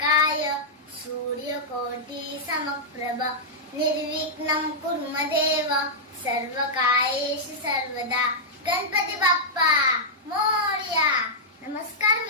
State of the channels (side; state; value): both; normal; correlation -0.09